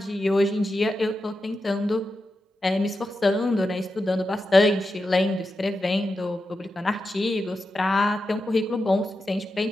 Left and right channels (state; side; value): normal; both; correlation 0.89